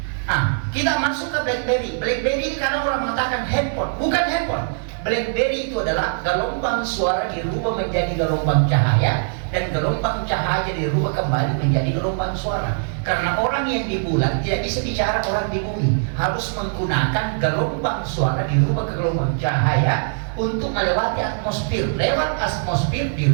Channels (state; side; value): silent; left; digital silence